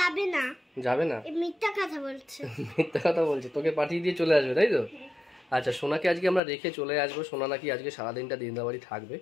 না। যাবে না? মিথ্যা কথা বলছে। মিথ্যা কথা বলছে, তোকে পাঠিয়ে দিয়ে চলে আসবে, তাই তো? আচ্ছা, সোনাকে আজকে আমরা রেখে চলে আসবো। সোনা নাকি আজকে সারাদিনটা দিনদার বাড়ি থাকবে,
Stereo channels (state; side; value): drops out; right; at 6.4 s